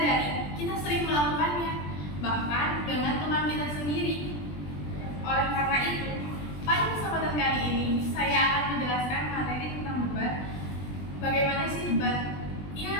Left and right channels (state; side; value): late; right; 20 ms